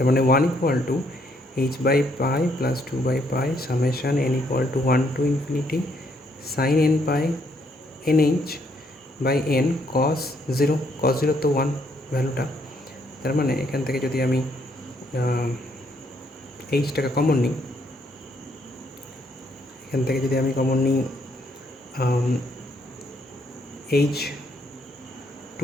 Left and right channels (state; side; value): normal; both; correlation 0.71